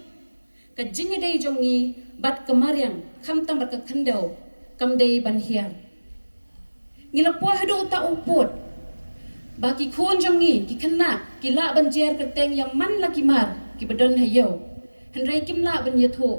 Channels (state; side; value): inverted; both; correlation -1.00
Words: kajing dei jongi bat kemaryang khamtang bat khandau kamdei ban hiar ngilapo hado ta uput baki khon jangi ki khna ki la banjer kerteng yang man la ki mar ki badon hayo hendrai kim la ban yatho